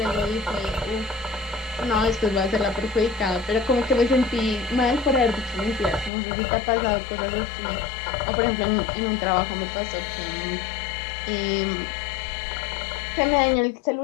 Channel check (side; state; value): right; drops out; at 6.1 s